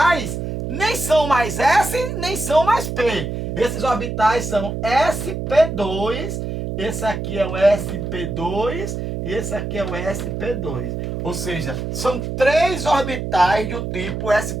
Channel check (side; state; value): right; noise; hum, 4 dB below the sound